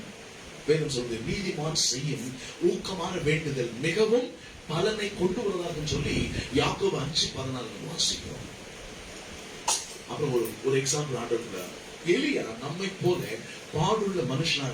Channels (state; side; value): identical; both; correlation 1.00